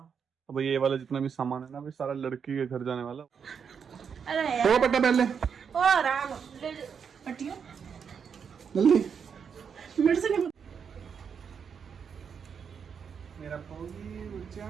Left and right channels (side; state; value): left; quieter; 6.8 dB